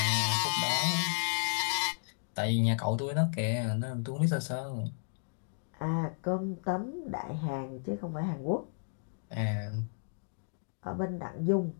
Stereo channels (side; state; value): right; silent; digital silence